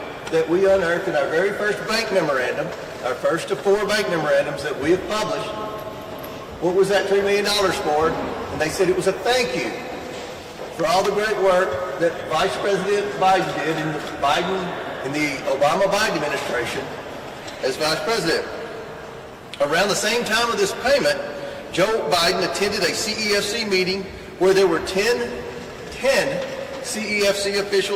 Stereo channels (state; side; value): identical; both; correlation 1.00